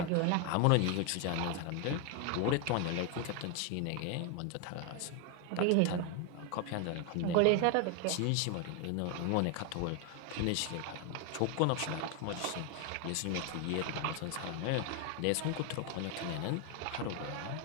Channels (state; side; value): different; both; correlation 0.01